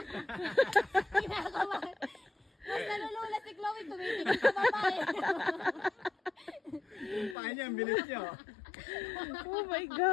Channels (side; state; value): right; drops out; at 7.4 s